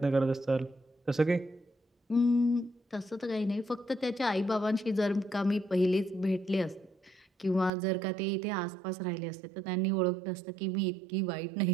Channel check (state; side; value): drops out; left; at 7.7 s